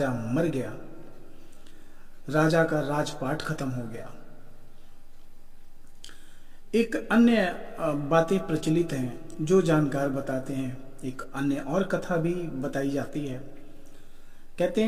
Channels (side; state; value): both; identical; correlation 1.00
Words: मर गया, राजा का राजपाट खत्म हो गया। एक अन्य बातें प्रचलित हैं जो जानकार बताते हैं। एक अन्य और कथा भी बताई जाती है। कहते